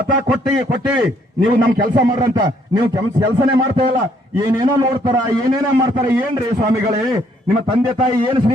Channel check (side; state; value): both; normal; correlation 0.67